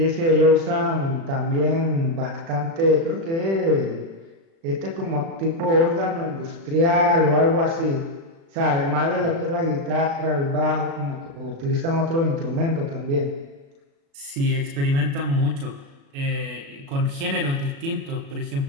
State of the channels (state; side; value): late; left; 36 ms